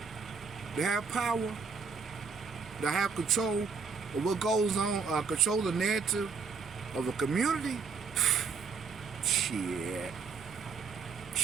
to have power, to have control of what goes on, control the narrative of a community. Shit.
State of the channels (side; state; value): left; quieter; 5.3 dB